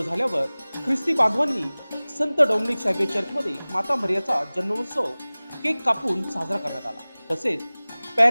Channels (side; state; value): both; inverted; correlation -0.99